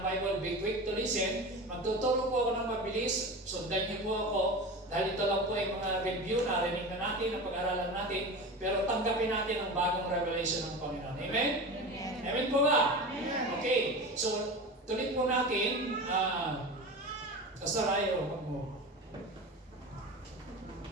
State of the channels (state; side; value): normal; both; correlation 0.30